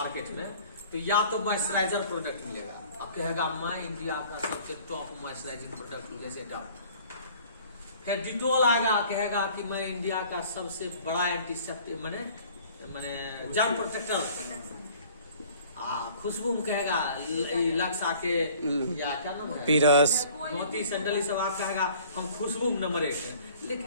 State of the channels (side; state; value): both; inverted; correlation -0.52